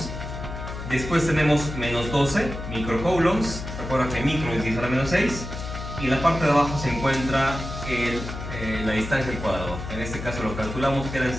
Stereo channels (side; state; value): left; noise; hum, 8 dB below the sound